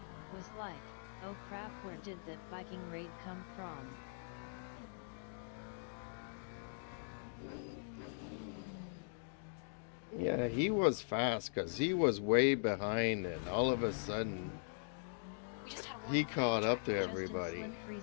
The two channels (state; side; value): silent; right; digital silence